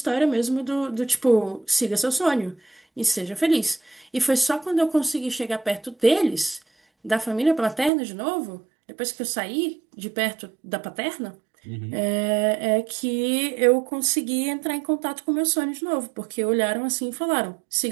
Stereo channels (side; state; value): left; drops out; at 7.9 s